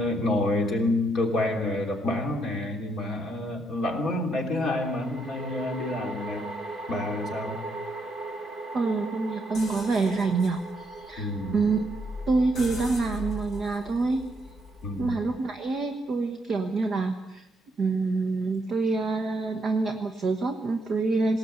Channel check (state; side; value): normal; both; correlation 0.76